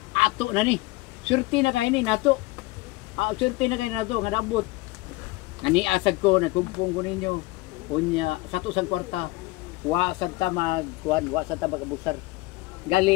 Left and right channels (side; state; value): right; quieter; 20.8 dB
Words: ato na ni. Surti na kay ni nato. Surti na kay nato nga nabot. Naniasag ko, nagkumpong ko ninyo. Unya sa to sang kwarta, wa sad ta magkuan, wa sad ta magabusar.